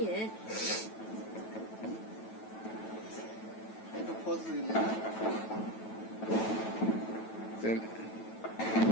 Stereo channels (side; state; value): right; late; 9.2 ms